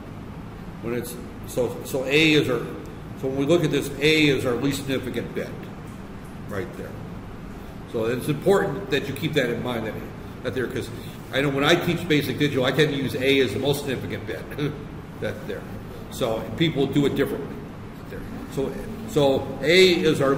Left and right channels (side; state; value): both; identical; correlation 1.00